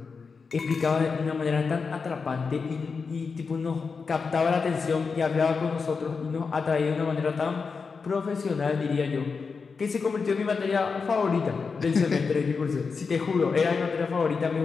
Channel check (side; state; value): right; quieter; 5.1 dB